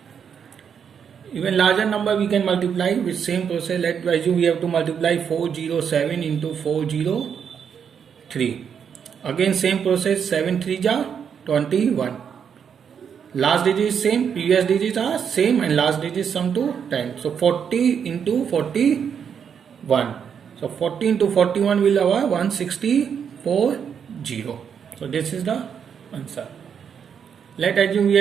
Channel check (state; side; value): quieter; left; 7.4 dB